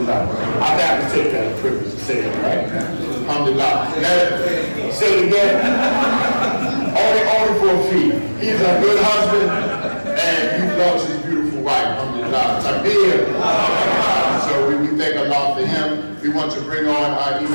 I have to take that privilege to say it, right? Alhamdulillah. Say it again. Only for a fee. He's a good husband and he loves his beautiful wife. Alhamdulillah. Takbir. So we thank Allah for him. We want to bring on our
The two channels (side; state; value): both; inverted; correlation -1.00